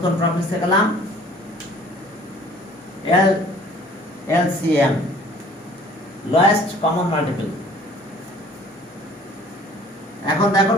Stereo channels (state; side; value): normal; both; correlation 0.52